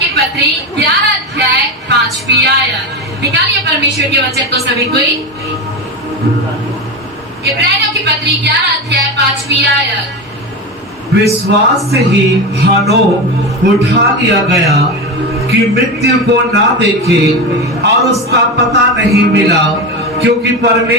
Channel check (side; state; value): both; normal; correlation 0.20